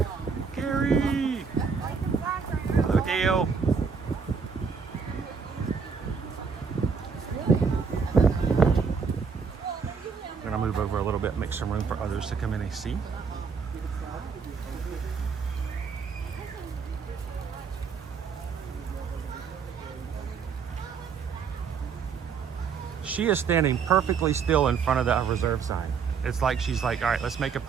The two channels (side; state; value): left; quieter; 5.8 dB